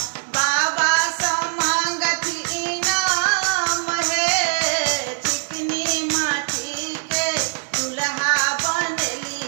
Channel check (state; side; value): silent; left; 64 dB below the other